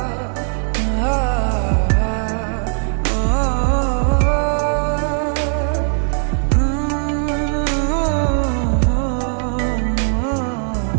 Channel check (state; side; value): silent; left; 57 dB below the other